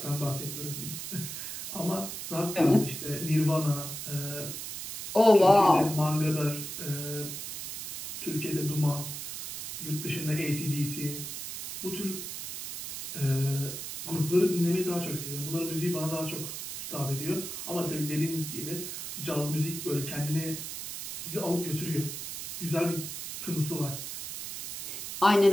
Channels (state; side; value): noise; right; hiss, 7 dB below the sound